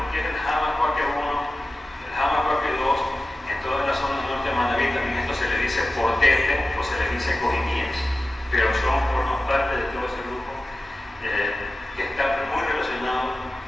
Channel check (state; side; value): normal; both; correlation 0.95